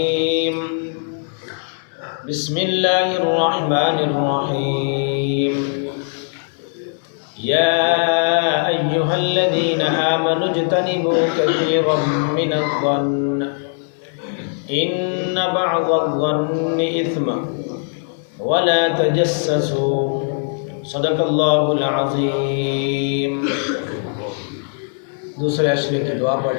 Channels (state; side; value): silent; right; 66 dB below the other